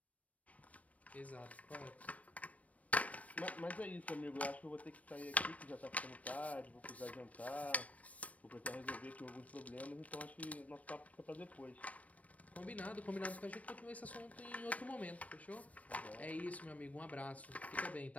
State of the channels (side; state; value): right; late; 0.067 ms